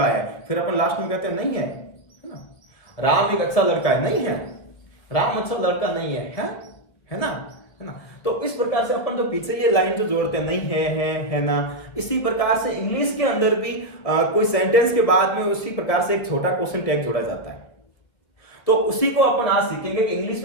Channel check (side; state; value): right; late; 2.0 ms